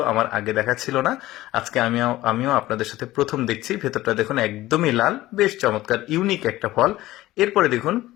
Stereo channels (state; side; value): quieter; right; 16.6 dB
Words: আমার আগে দেখা ছিল না, আজকে আমিও আপনাদের সাথে প্রথম দেখছি। ভেতরটা দেখুন একদমই লাল, বেশ চমৎকার, ইউনিক একটা ফল। এরপরে দেখুন,